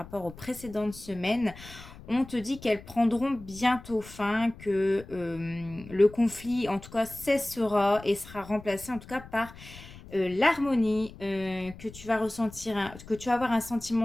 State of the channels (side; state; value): left; noise; rumble, 17 dB below the sound